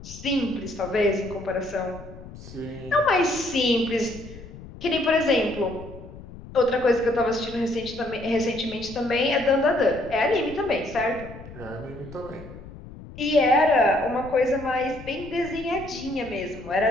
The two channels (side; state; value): left; noise; rumble, 16 dB below the sound